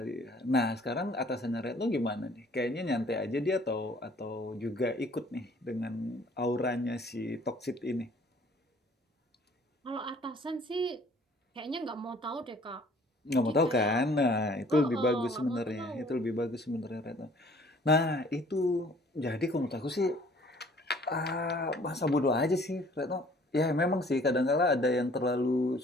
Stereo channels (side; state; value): both; normal; correlation 0.56